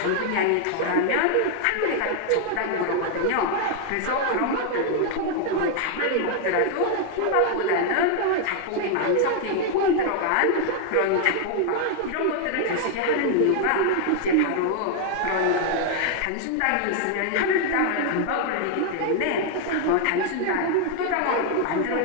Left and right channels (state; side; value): different; both; correlation 0.00